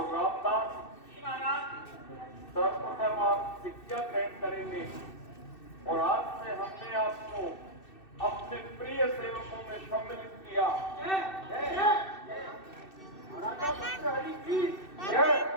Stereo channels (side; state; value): right; late; 2.6 ms